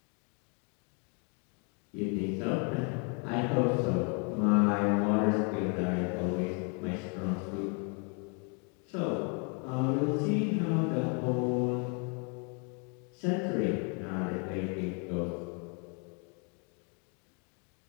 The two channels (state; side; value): quieter; right; 36.7 dB